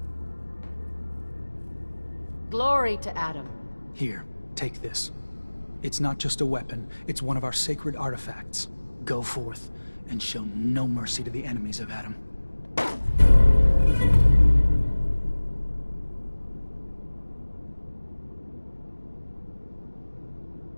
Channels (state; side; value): inverted; both; correlation -1.00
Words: Glory to Adam. Here, take this. It's not just a weapon, it's one of our sacred artifacts. Go forth and show no mercy to the enemies of Adam.